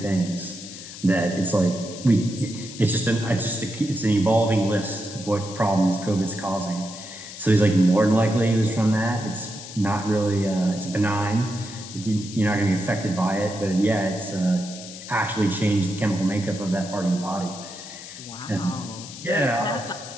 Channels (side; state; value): left; noise; hiss, 13 dB below the sound